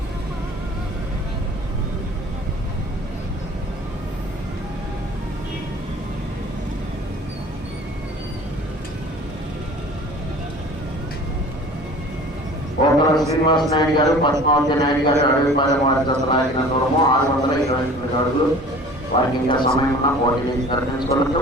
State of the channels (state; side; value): normal; both; correlation 0.45